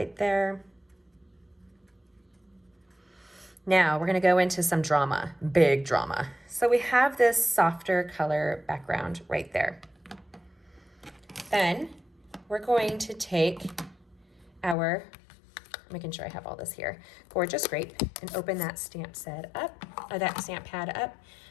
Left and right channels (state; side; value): drops out; right; at 14.8 s